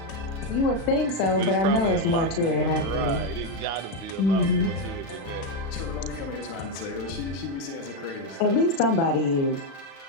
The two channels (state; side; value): late; right; 36 ms